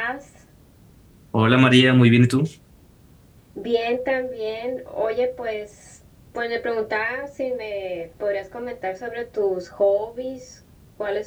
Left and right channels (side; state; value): both; identical; correlation 1.00